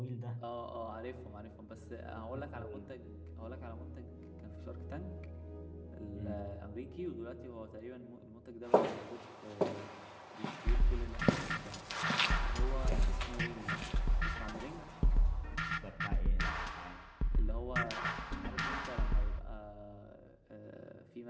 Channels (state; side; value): identical; both; correlation 1.00